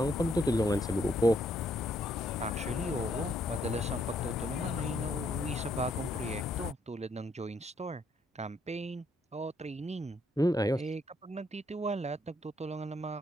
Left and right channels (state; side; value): normal; both; correlation 0.71